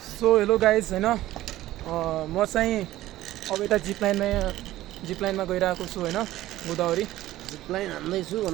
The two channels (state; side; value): quieter; left; 15.2 dB